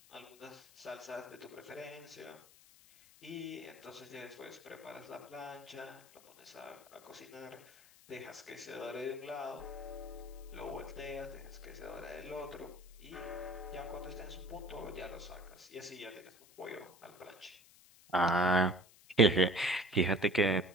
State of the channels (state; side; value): noise; left; hiss, 24 dB below the sound